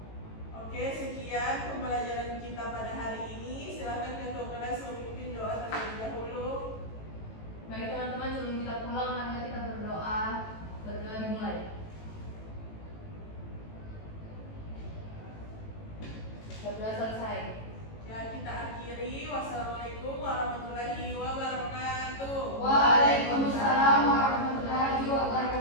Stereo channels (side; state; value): right; late; 18 ms